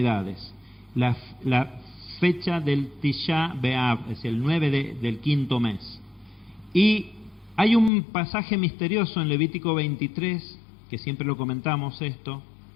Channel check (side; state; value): right; drops out; at 7.9 s